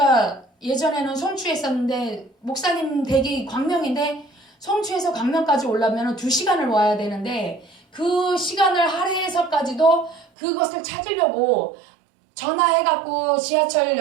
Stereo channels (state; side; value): drops out; left; at 10.2 s